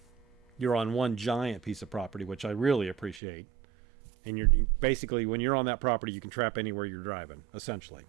you're on one giant piece of property, which I really appreciate. And you're basically, when you're on that property, you can trap anywhere you're driving, essentially.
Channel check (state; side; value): drops out; left; at 3.2 s